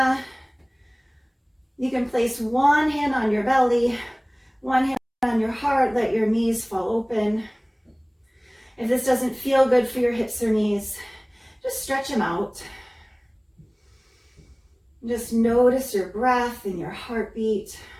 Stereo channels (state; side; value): identical; both; correlation 1.00